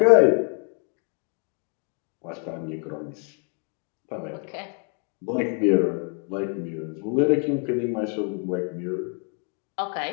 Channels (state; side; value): quieter; right; 39.1 dB